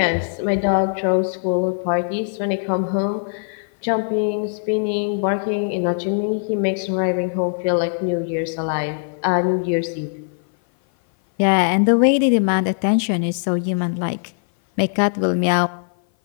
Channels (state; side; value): silent; right; 57 dB below the other